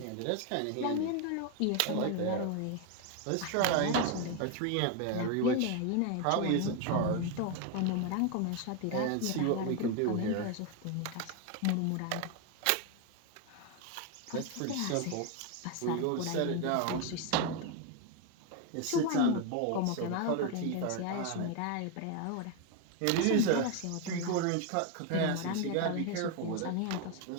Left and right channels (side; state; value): both; different; correlation 0.01